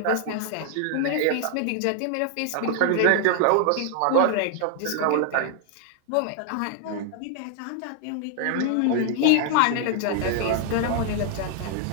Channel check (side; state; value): both; different; correlation 0.00